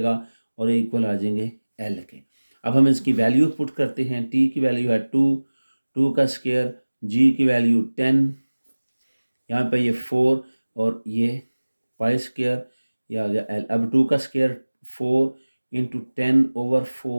और इक्वल आ जाएंगे एल के। अब हम इसकी वैल्यू पुट करते हैं। टी की वैल्यू है 2, 2 का स्केयर, जी की वैल्यू 10, यहाँ पे ये 4 और ये पाई स्केयर, ये आ गया एल। अब 2 का square 4 into 10 over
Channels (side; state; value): both; inverted; correlation -1.00